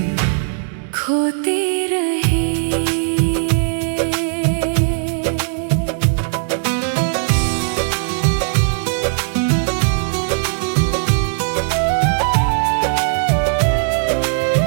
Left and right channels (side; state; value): left; silent; digital silence